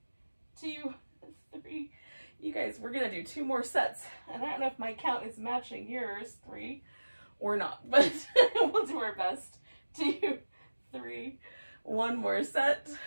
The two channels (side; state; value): both; inverted; correlation -1.00